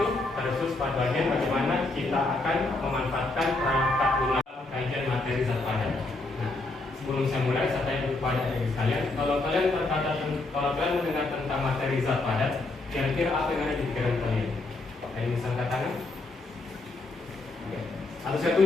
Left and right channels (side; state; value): right; quieter; 3.1 dB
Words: Terkhusus pada bagian bagaimana kita akan memanfaatkan perangkat lunak kajian materi zat padat. Nah, sebelum saya mulai, saya tanya kepada adik sekalian, kalau kalian mendengar tentang materi zat padat, kira-kira apa yang ada di pikiran kalian? Ada yang bisa angkat tangan? Oke. Atau saya